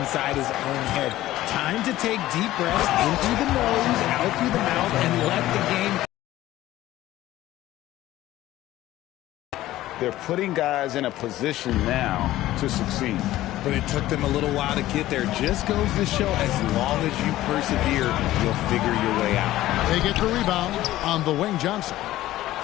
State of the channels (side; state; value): right; quieter; 15.3 dB